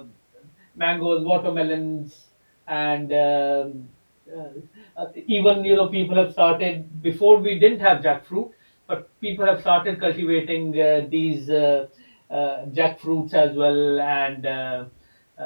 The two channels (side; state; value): both; inverted; correlation -1.00